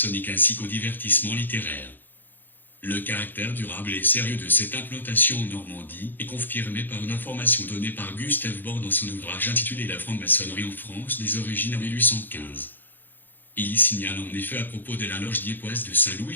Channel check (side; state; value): right; late; 0.090 ms